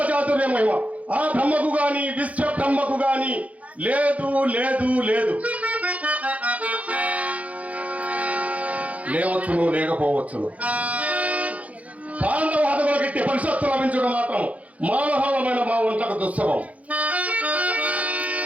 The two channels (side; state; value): left; late; 0.067 ms